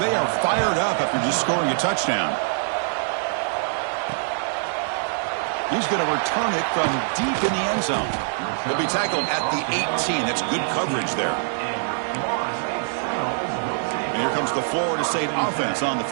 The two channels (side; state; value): left; silent; digital silence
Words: are fired up after just scoring a touchdown. He's going to return it from deep in the end zone. He'll be tackled at the 18. That's good coverage there. And here comes the Florida State offense on the